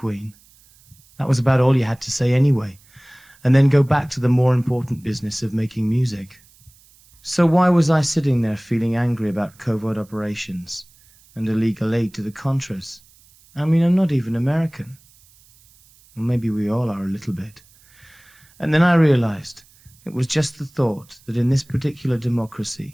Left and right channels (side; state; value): right; noise; hiss, 29 dB below the sound